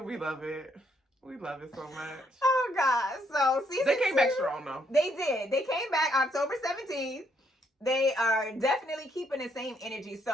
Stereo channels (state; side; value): normal; both; correlation 0.72